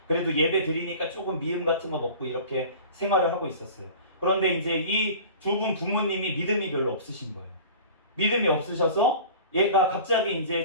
그래도 예배 드리니까 조금 미음 같은 거 먹고 이렇게 생활을 하고 있었어요. 그런데 이제 이 두 분 부모님이 믿음이 별로 없으신 거예요. 믿음이 없으셔서 얘가 갑자기 이제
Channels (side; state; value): both; inverted; correlation -0.41